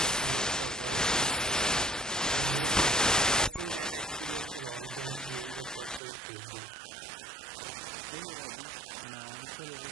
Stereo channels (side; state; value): left; drops out; at 6.0 s